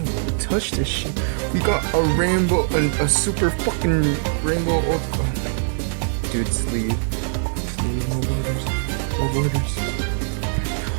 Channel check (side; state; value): left; silent; digital silence